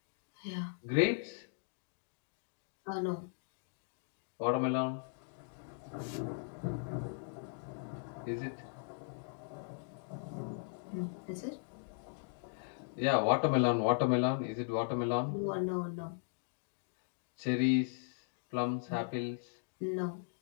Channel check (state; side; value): silent; right; digital silence